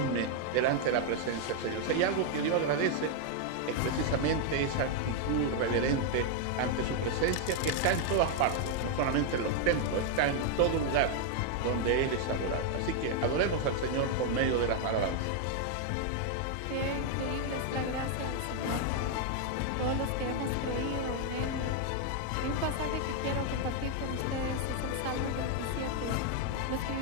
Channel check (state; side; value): different; both; correlation 0.00